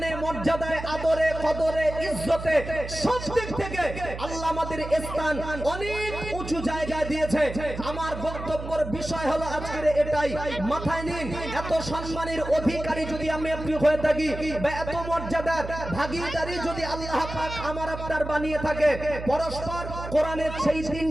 মর্যাদায়, আদরে, কদরে, ইজ্জতে, সব দিক থেকে আল্লাহ আমাদের স্থান অনেক উঁচু জায়গায় দিয়েছে। আমার বক্তব্যের বিষয় হলো আজকের এটাই, মাথায় নিন। এত সম্মানের অধিকারী যদি আমি আপনি হয়ে থাকি, বা এত মর্যাদার ভাগীদারি যদি আল্লাহ পাক আমার আপনার বানিয়ে থাকে, পরস্পর কোরআনের সেই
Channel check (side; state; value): right; noise; hum, 9 dB below the sound